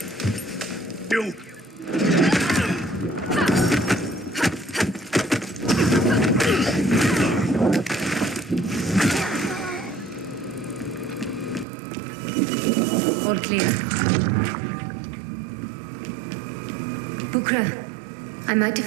You. All clear. Bukra, I might have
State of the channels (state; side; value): drops out; left; at 11.7 s